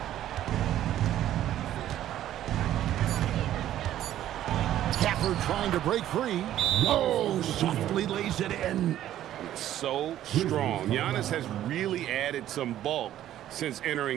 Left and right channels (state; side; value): quieter; left; 12.3 dB